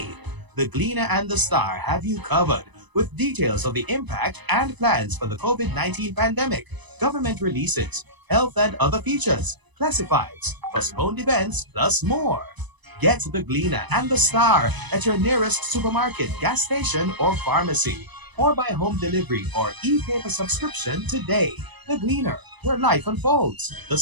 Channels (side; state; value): left; late; 1.0 ms